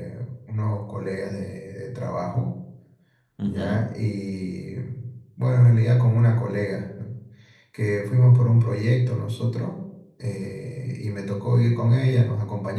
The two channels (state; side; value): identical; both; correlation 1.00